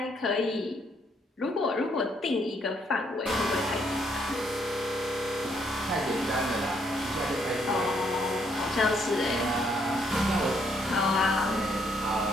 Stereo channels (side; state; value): both; normal; correlation 0.71